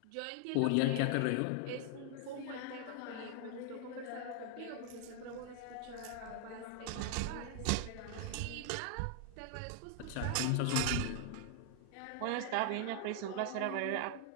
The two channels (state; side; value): different; both; correlation 0.00